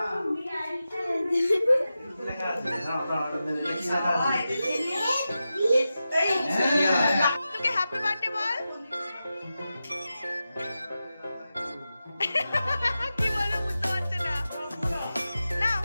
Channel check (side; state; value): both; inverted; correlation -0.92